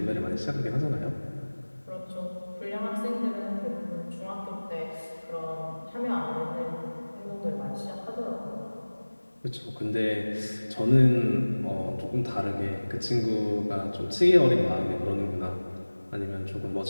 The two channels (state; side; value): inverted; both; correlation -1.00